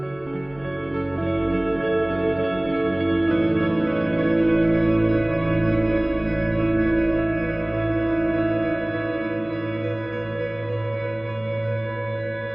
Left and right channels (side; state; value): left; noise; hum, 27 dB below the sound